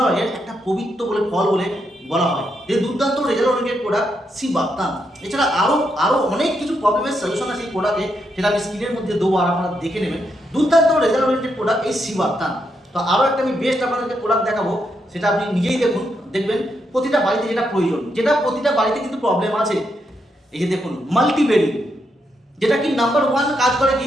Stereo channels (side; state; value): both; normal; correlation 0.80